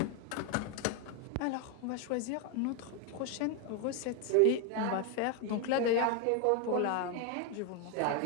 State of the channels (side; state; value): both; different; correlation 0.01